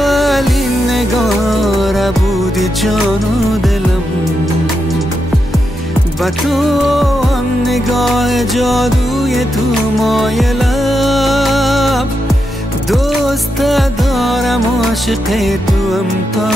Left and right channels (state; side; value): normal; both; correlation 0.85